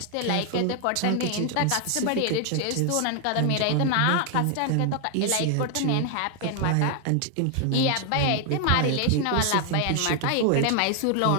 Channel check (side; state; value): both; different; correlation 0.00